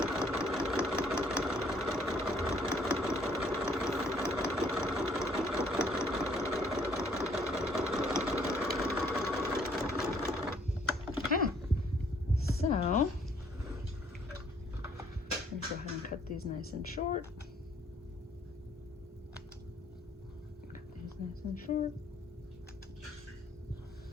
So, let's go ahead and cut these nice and short. Cut these nice and short.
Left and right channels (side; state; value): both; normal; correlation 0.64